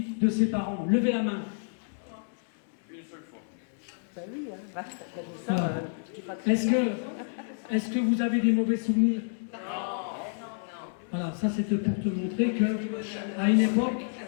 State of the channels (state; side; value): silent; right; 58 dB below the other